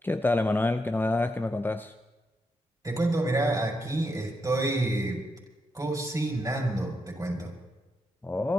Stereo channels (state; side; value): normal; both; correlation 0.82